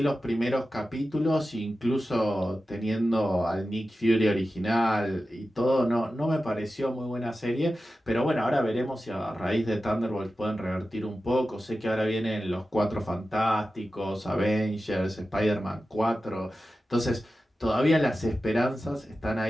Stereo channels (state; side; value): normal; both; correlation 0.93